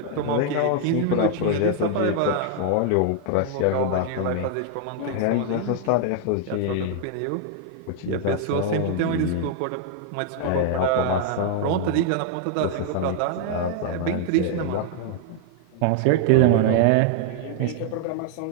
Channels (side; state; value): both; different; correlation 0.00